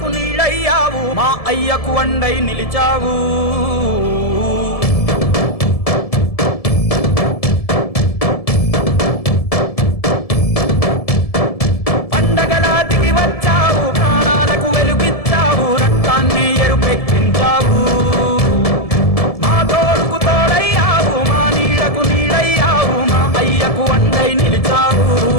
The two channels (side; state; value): right; late; 1.7 ms